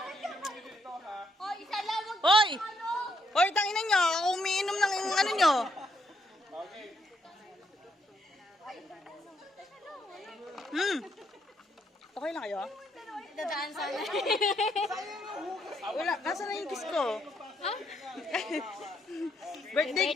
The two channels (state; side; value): normal; both; correlation 0.75